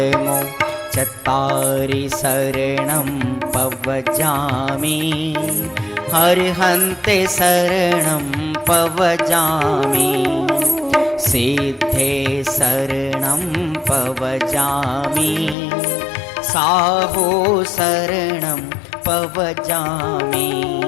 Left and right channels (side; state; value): right; drops out; at 15.6 s